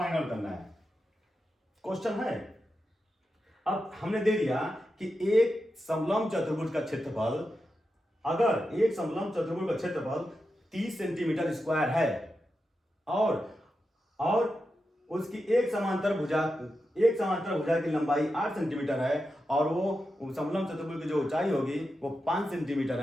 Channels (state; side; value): normal; both; correlation 0.89